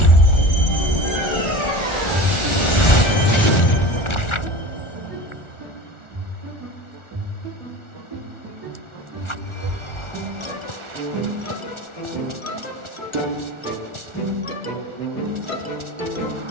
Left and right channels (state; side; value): late; right; 1.4 ms